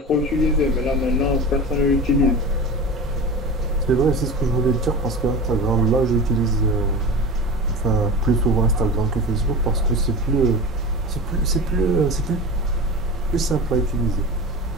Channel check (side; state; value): both; normal; correlation 0.30